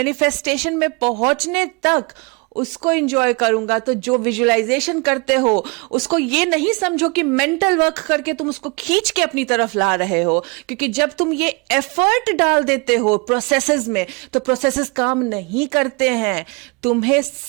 में पहुंचने तक, उसको एंजॉय करूंगा। तो जो विजुअलाइजेशन करते हो उसको ये नहीं समझो कि मेंटल वर्क करके तुम उसको खींच के अपनी तरफ ला रहे हो, क्योंकि जब तुम ये एफर्ट डाल देते हो प्रोसेसेस में तो प्रोसेसेस काम नहीं करते हैं। तुम्हें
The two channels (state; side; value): quieter; left; 29.8 dB